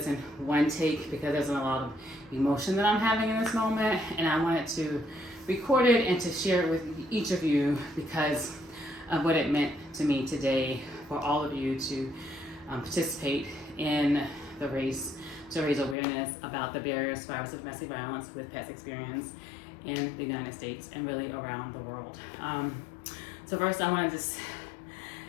in one take because there's a lot of emotion that I'm having in this moment, and I wanted to record it and to share it with each of you because of what it meant to me today for all of you to participate in the race to raise awareness about the barriers to survivors of domestic violence with pets experience in the United States and really around the world. So first I want to just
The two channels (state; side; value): drops out; right; at 16.0 s